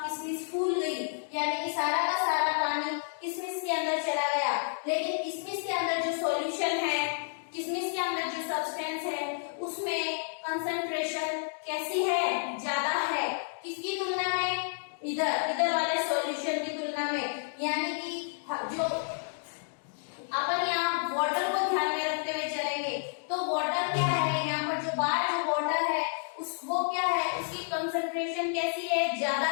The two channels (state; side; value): silent; right; digital silence